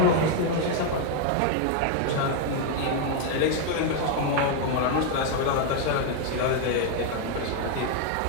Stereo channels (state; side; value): different; both; correlation 0.01